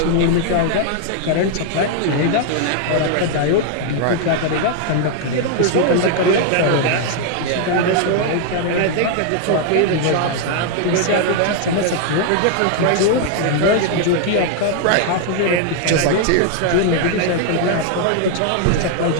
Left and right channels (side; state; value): both; different; correlation 0.00